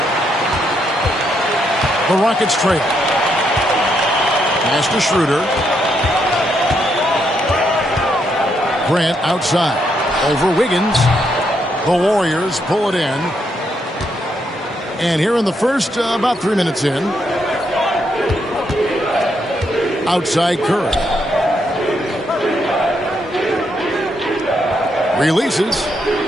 The Rockets trail. Pass to Schroeder. Grant outside. Over Wiggins. The Warriors pull it in. And here in the first, about 3 minutes in. Outside Curry. Releases.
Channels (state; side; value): normal; both; correlation 0.77